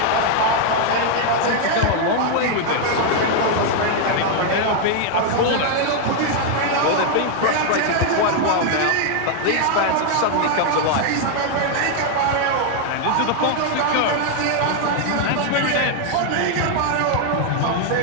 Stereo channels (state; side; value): different; both; correlation 0.00